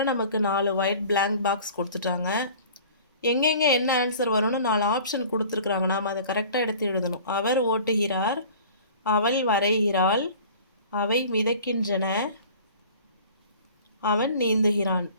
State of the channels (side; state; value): both; inverted; correlation -0.46